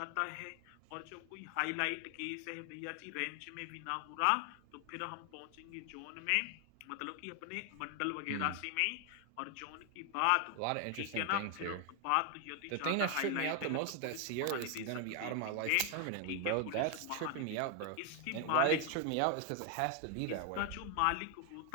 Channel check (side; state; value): both; different; correlation 0.01